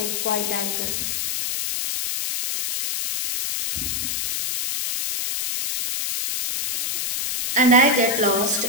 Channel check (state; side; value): noise; left; hiss, 2 dB below the sound